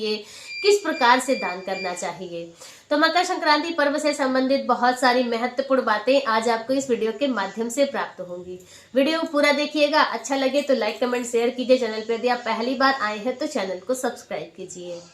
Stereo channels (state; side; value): identical; both; correlation 1.00